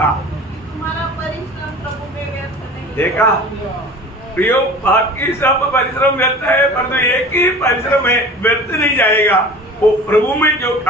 तुम्हारा परिश्रम प्रभु में व्यर्थ नहीं। देखा प्रियो, बाकी सब परिश्रम व्यर्थ है परंतु एक ही परिश्रम है व्यर्थ नहीं जाएगा, वो प्रभु में जो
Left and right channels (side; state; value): both; normal; correlation 0.40